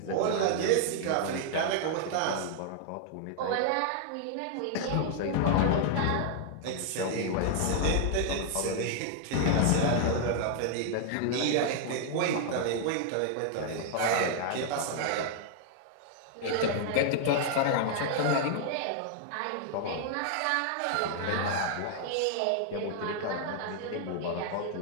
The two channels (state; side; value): different; both; correlation 0.00